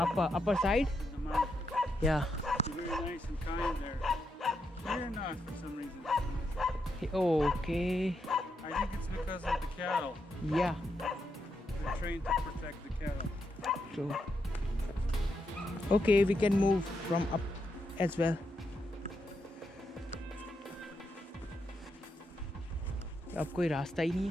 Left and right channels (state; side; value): normal; both; correlation 0.82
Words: side? the mountains. Yeah. They're very nice and kind there. Here not for some reason. Okay. I think it's because of the cattle. Yeah. They're trained to protect the cattle. True. Okay, we can move from up as well. अब कोई रास्ता ही नहीं